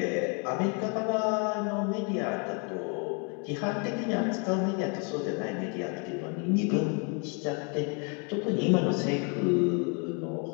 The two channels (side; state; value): right; quieter; 35.4 dB